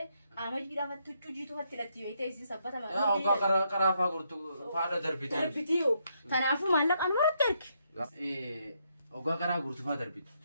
أما جيدا فتوچو جيتو فتلتي ويته سبتا ما يا أوكا كرا فاقرتو فادا دربيتو دربيتيو تنافو مالك أنا ما ترجع أوكا كرا قرتو فادا دربيت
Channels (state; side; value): inverted; both; correlation -0.76